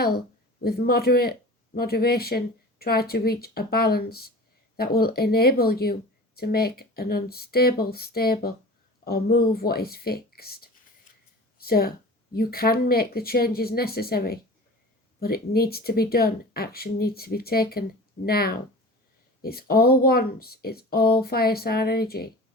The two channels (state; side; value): normal; both; correlation 0.37